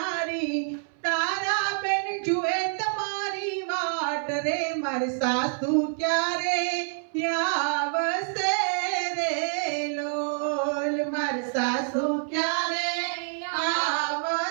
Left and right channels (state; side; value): silent; left; 58 dB below the other